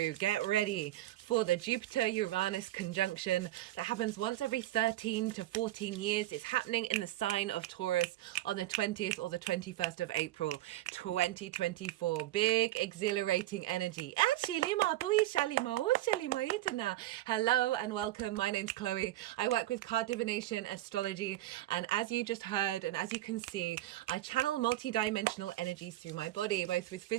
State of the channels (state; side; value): quieter; left; 15.3 dB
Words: Get ready for the Jupiter-Uranus conjunction that happens once every 13 to 14 years. It's happening in the sign of Taurus on the 20th or the 21st of April, 2024. Big, exhilarating energy. Hello and welcome. My name's Chloe. I work with card divination, astrology, and as you just heard and as you can see, I channel multi-dimensional energies through my body, both with